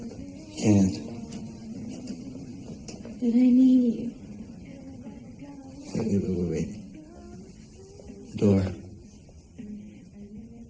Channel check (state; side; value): identical; both; correlation 1.00